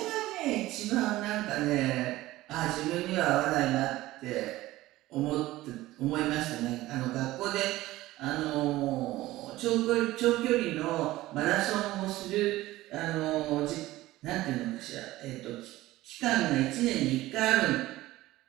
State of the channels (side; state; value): left; quieter; 17.0 dB